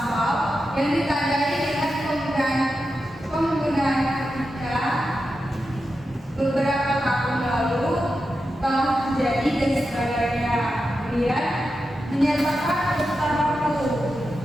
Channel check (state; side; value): normal; both; correlation 0.89